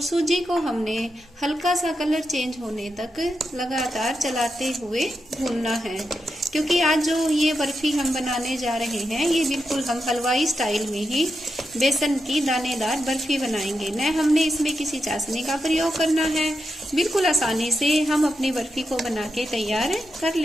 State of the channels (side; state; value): both; normal; correlation 0.86